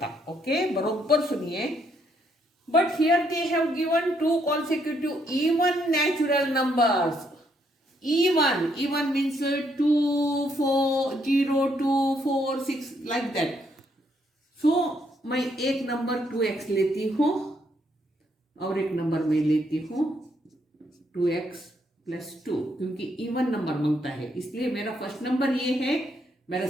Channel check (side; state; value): both; normal; correlation 0.73